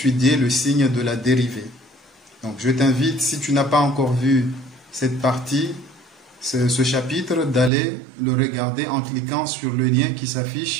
le signe de la dérivée. Donc je t'invite, si tu n'as pas encore vu cette partie, ce chapitre, d'aller le regarder en cliquant sur le lien qui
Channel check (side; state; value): left; drops out; at 7.7 s